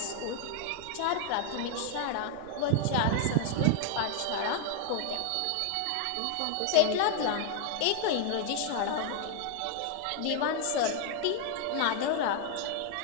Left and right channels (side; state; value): both; different; correlation 0.00